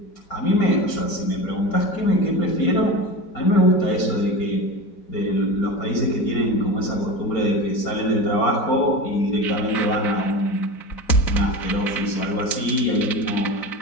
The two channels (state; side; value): late; right; 4.4 ms